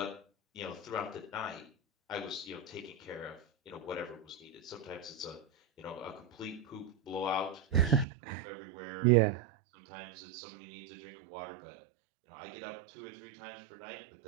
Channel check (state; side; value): drops out; left; at 8.1 s